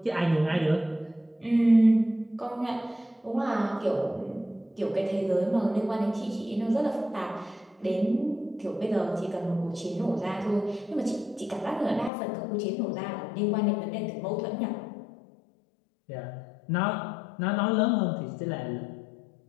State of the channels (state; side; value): drops out; right; at 12.1 s